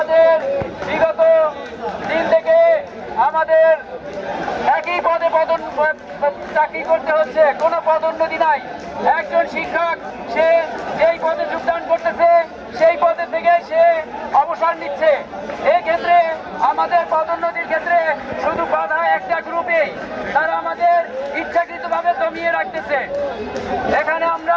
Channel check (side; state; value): both; identical; correlation 1.00